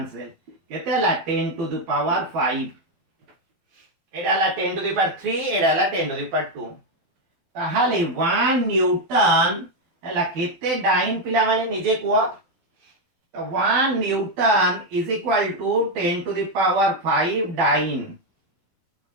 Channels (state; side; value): late; left; 12 ms